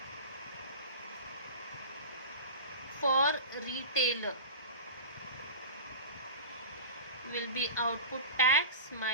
for retailer will be output tax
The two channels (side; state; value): both; inverted; correlation -0.30